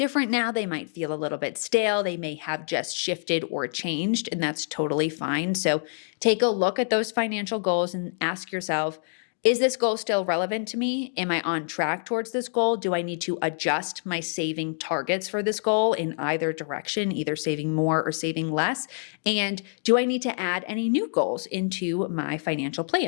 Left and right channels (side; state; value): right; silent; 61 dB below the other